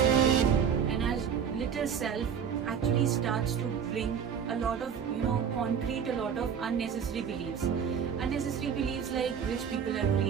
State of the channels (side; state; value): left; quieter; 7.5 dB